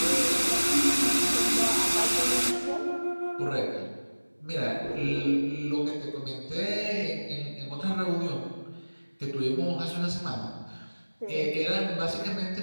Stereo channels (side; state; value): both; inverted; correlation -1.00